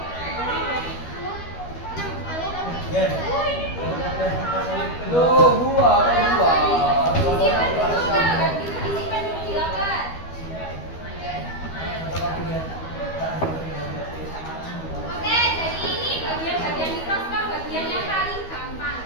Tuh, buah. Disimpan dulu kan? Itu disimpan dulu di loker. Oke, jadi ini bagian-bagian mikroskop, bagian yang paling gampang.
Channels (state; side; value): late; right; 12 ms